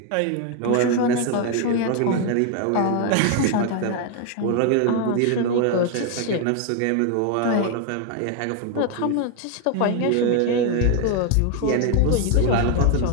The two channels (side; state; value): both; different; correlation 0.01